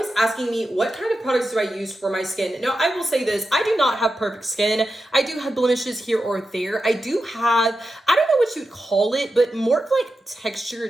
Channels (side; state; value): both; normal; correlation 0.90